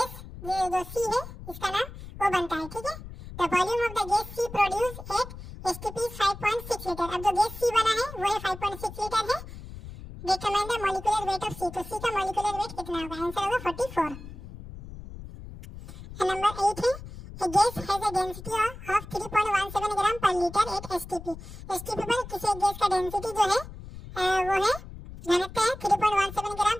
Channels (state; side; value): noise; left; rumble, 13 dB below the sound